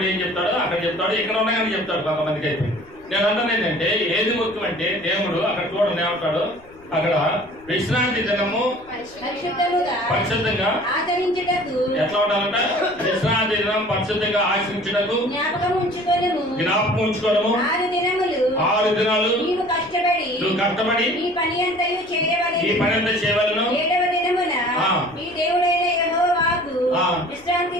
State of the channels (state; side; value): noise; left; rumble, 27 dB below the sound